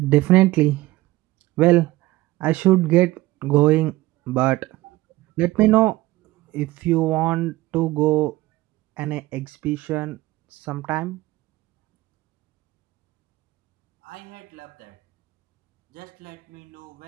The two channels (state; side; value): quieter; left; 18.4 dB